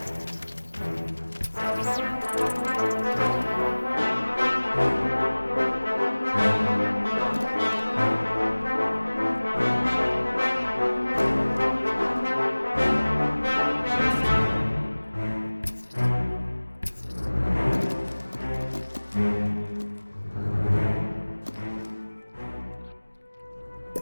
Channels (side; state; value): both; inverted; correlation -1.00